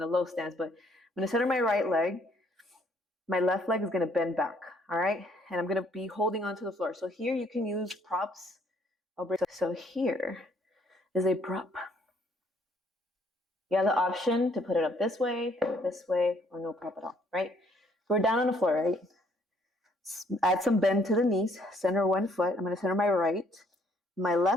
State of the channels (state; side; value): normal; both; correlation 0.65